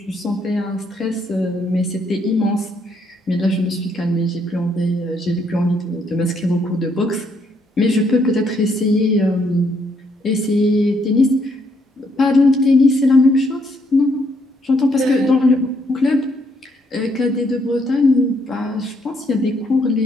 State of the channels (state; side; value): normal; both; correlation 0.72